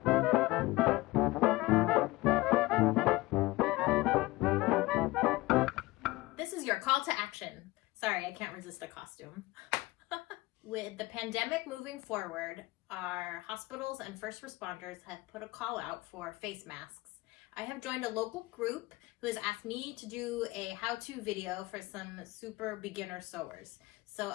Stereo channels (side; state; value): right; quieter; 20.7 dB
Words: This is your call to action. Sorry, I can't resist a costume. With the pandemic moving forward, our hospitals and first responders have put a call out for face masks. I have joined a local group who has asked me to do a how-to video for some super beginner sewers. So